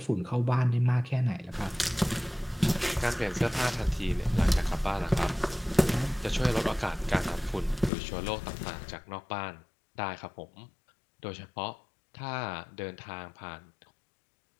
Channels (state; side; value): drops out; right; at 7.9 s